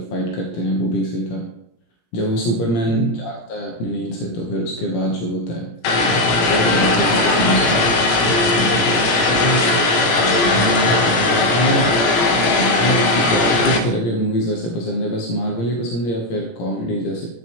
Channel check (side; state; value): right; late; 17 ms